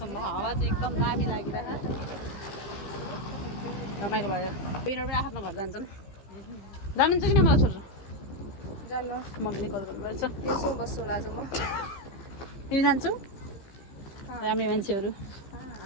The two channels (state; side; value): late; right; 15 ms